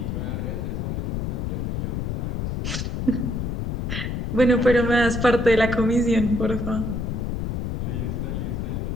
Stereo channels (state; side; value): noise; left; rumble, 2 dB below the sound